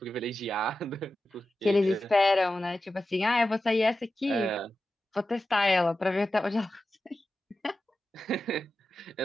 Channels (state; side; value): normal; both; correlation 0.92